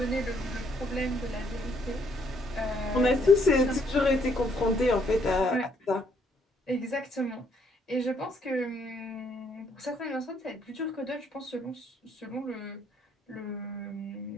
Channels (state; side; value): normal; both; correlation 0.69